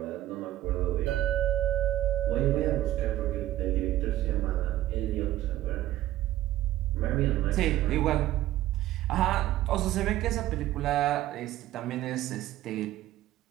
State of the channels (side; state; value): left; quieter; 14.4 dB